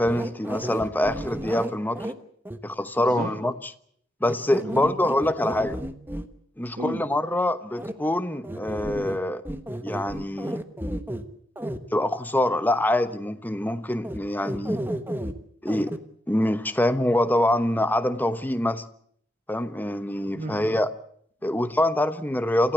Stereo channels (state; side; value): normal; both; correlation 0.84